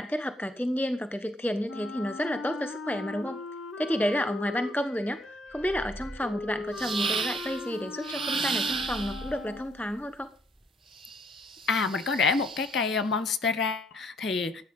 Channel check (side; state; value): both; normal; correlation 0.69